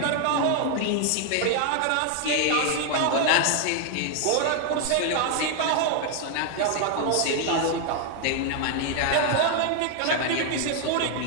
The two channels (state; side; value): different; both; correlation 0.00